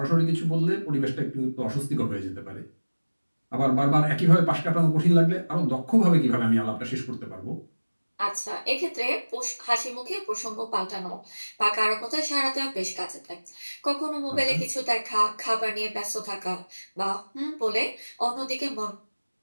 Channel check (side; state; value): both; inverted; correlation -1.00